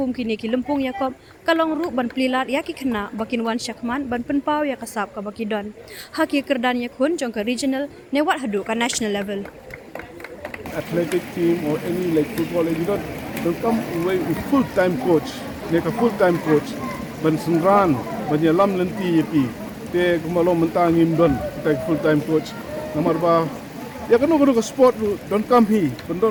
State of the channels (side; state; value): both; identical; correlation 1.00